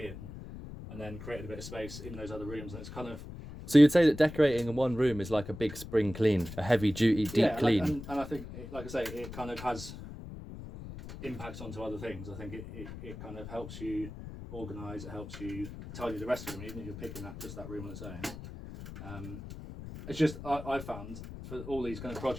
and then created a bit of space in those other rooms. And it's kind of, So you'd say that decorating in one room is like a big spring clean, a heavy duty deep clean. And I think, like I say, it kind of has impacts onto other things. I think it kind of helps you organise, it helps you tidy the rest of the room, even if you're picking just that room on its own. It's just, I found for all these kind of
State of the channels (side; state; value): left; noise; rumble, 11 dB below the sound